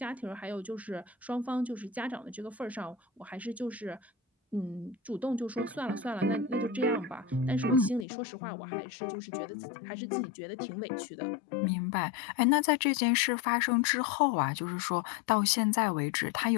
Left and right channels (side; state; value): right; drops out; at 8.1 s